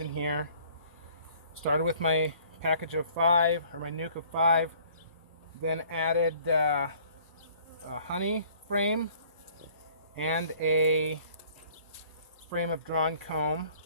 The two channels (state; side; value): inverted; both; correlation -0.56